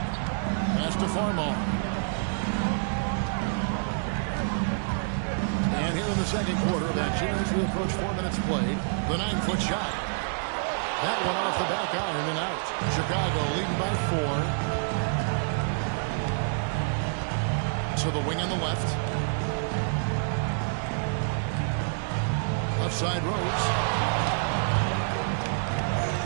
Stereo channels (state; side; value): silent; left; digital silence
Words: Pass to Farmar. And here in the second quarter of action, as we approach 4 minutes played, the 9-foot shot. That one off the back iron and out. Chicago leading by 4. To the wing on the left. Left side Rose.